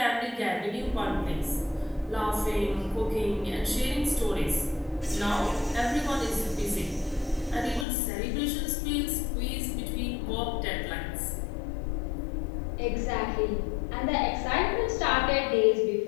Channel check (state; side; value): drops out; right; at 7.9 s